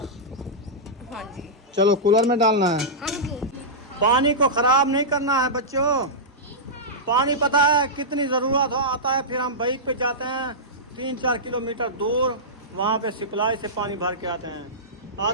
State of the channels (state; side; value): normal; both; correlation -0.13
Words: जी। चलो कूलर में डालना है। हाँ जी। पानी को खराब नहीं करना है बच्चों। पानी पता है कितनी ज़रूरत हो आता है, फिर हम बाइक पे जाते हैं 3-4 किलोमीटर दूर, वहाँ पे सप्लाई से पानी भर के आते हैं।